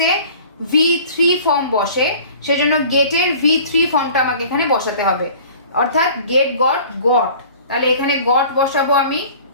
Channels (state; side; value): inverted; both; correlation -0.46